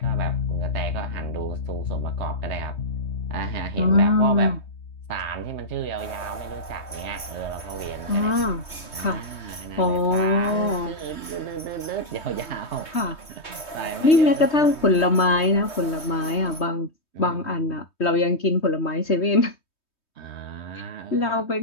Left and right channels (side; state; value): right; late; 3.2 ms